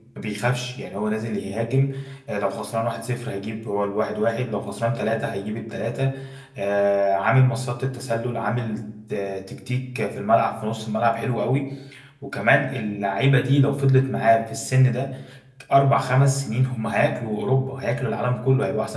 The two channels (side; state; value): both; identical; correlation 1.00